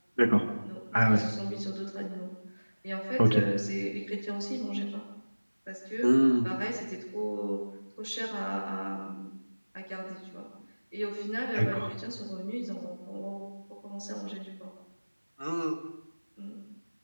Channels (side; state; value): both; inverted; correlation -1.00